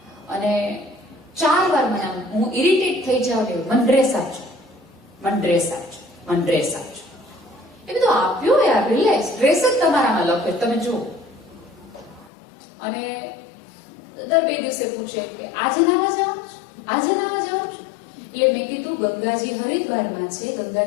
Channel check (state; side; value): drops out; right; at 12.3 s